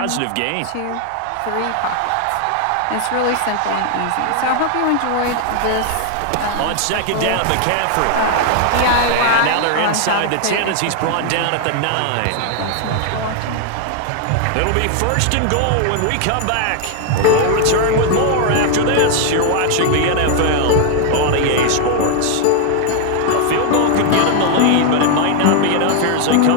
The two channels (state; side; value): different; both; correlation 0.00